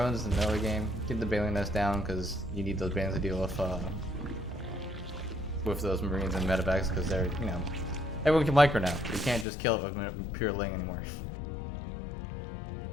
in the middle of the game. Get the Baleen Nest down because you need those bands to deal with those Marines and medevacs because they're, you know, everyone can micro now. You can't just kill it with pure ling anymore.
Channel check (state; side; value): drops out; right; at 9.5 s